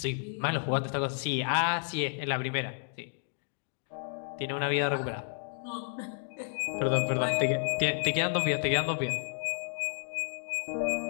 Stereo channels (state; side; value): silent; right; digital silence